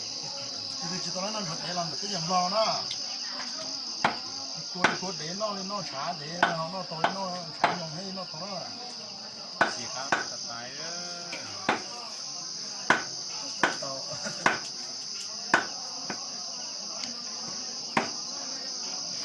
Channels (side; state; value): both; identical; correlation 1.00